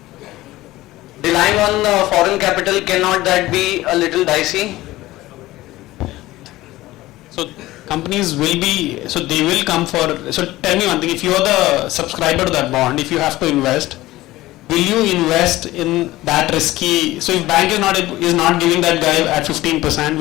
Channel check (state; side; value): quieter; right; 17.3 dB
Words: Relying on foreign capital, cannot that be a little dicey? So companies will be, so they will come for, so tell me one thing, if you are the subscriber to that bond, if you have to invest, will you invest in that risky, so if bank is not giving that guy at 15%,